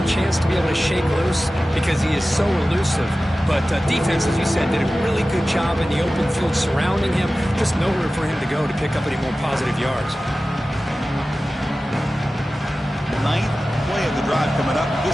chance to be able to shake loose because he is so elusive. But defense, as you said, did a really good job in the open field surrounding him. Just nowhere for him to go to pick up any more positive yards. Ninth play of the drive coming up.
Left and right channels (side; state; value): both; normal; correlation 0.95